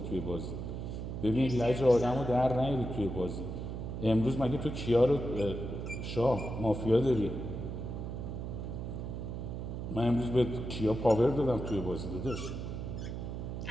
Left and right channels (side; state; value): right; noise; hum, 6 dB below the sound